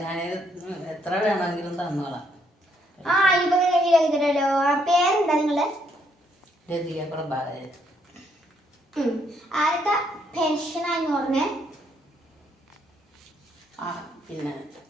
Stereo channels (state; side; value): normal; both; correlation 0.72